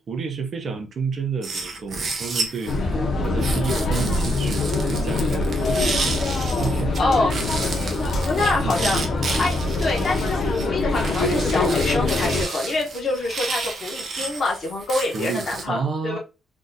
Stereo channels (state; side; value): normal; both; correlation 0.76